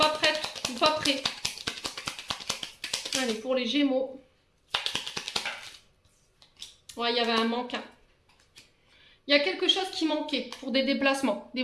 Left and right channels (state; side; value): identical; both; correlation 1.00